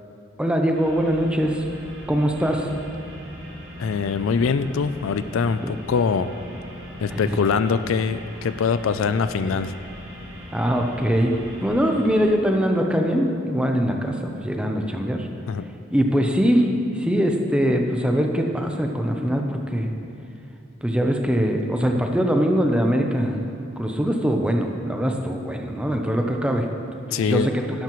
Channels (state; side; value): normal; both; correlation 0.71